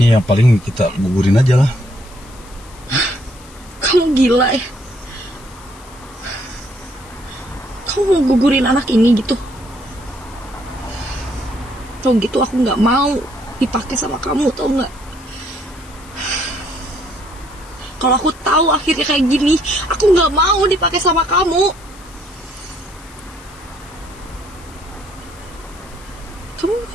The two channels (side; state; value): left; noise; hiss, 22 dB below the sound